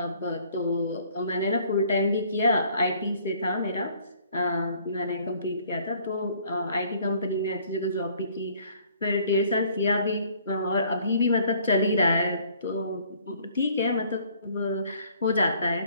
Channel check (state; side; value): inverted; both; correlation -0.59